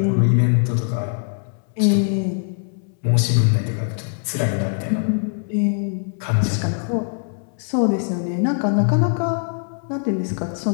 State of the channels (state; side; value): silent; right; 64 dB below the other